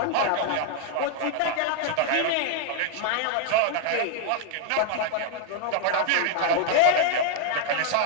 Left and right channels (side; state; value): both; different; correlation 0.00